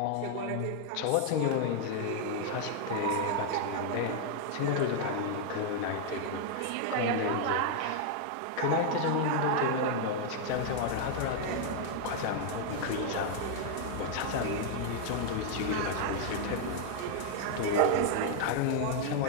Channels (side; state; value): both; different; correlation 0.00